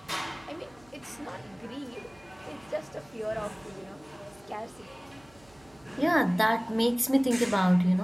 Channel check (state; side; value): noise; right; hum, 27 dB below the sound